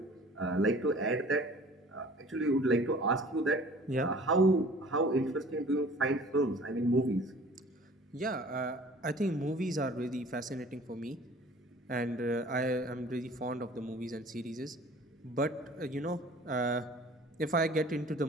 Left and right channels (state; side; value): normal; both; correlation 0.48